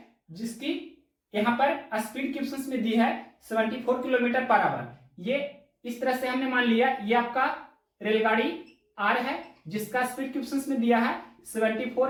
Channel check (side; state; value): both; identical; correlation 1.00